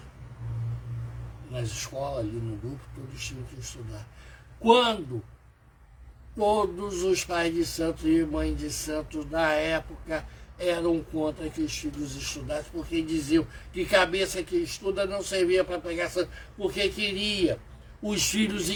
Nas escolas, ali no grupo, todos tinham que estudar. Quando todos os pais de santos e mães de santos da época eram contra que os filhos estudassem, porque diziam que cabeça que estuda não servia para pegar santo, porque queria os filhos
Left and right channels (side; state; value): both; identical; correlation 1.00